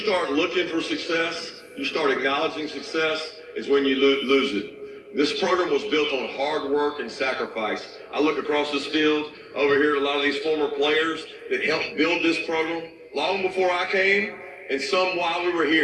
looking for success, you start acknowledging success, is when you lose it. This program was built on hard work and sacrifice. I look across this field over here at a lot of these former players that helped build this program long before I came, and some while we were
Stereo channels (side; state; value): both; identical; correlation 1.00